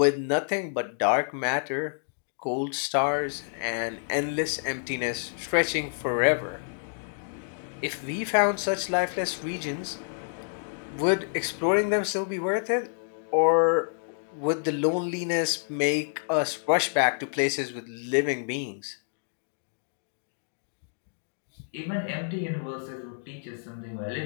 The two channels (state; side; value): silent; right; digital silence